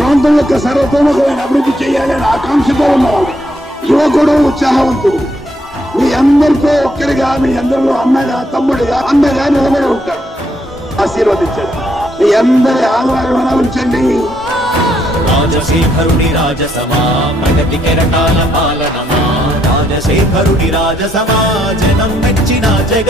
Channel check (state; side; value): normal; both; correlation 0.74